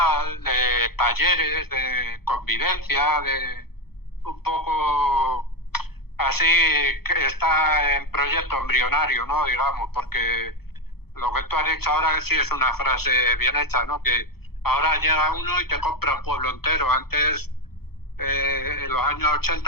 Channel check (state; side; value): late; right; 0.96 ms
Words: de talleres, de convivencia, de un poco así, que está en proyecto embrionario, ¿no? Digamos, porque lo que tú has dicho ahora sí es una frase bien hecha, ¿no? Que ahora llega uno y te compra un pueblo entero. Antes, en los años